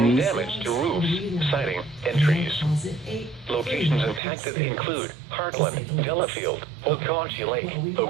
WCTV? damage to roofs, siding, and trees. Locations impacted include Heartland, Delafield, Okaushee Lake,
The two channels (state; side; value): drops out; left; at 4.2 s